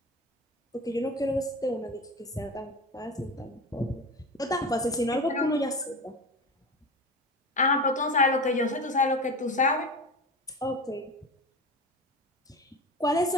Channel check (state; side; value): normal; both; correlation 0.28